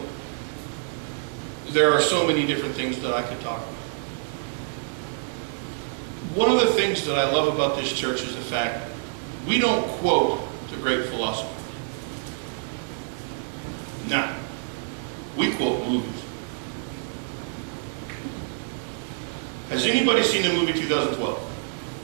there are so many different things that I could talk about. One of the things that I love about this church is the fact we don't quote the great philosophers. No. We quote movies. Has anybody seen the movie 2012?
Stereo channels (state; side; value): silent; left; digital silence